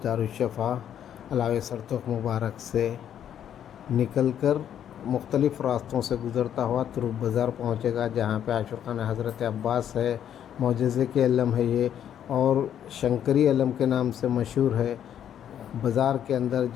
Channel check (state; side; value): quieter; right; 9.8 dB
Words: दारुश्शफ़ा अलावे सरतुख मुबारक से निकल कर मुख्तलिफ़ रास्तों से गुज़रता हुआ तुरुप बाज़ार पहुँचेगा, जहाँ पे आशूर खाना हज़रत अब्बास है। मोजज़े के अलम है ये और शंकरी अलम के नाम से मशहूर है। बाज़ार के अंदर